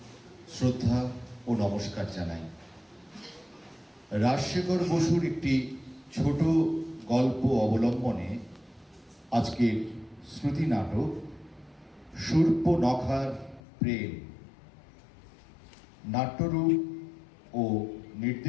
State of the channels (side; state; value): right; drops out; at 13.6 s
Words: শ্রদ্ধা ও নমস্কার জানাই। রাজশেখর বসুর একটি ছোট গল্প অবলম্বনে আজকের শ্রুতি নাটক শূর্পনখার প্রেম নাট্যরূপ ও